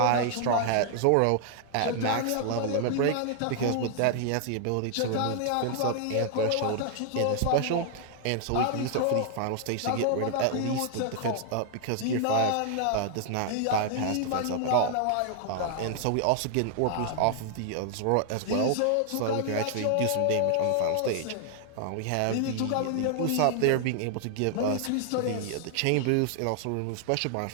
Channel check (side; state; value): both; different; correlation 0.00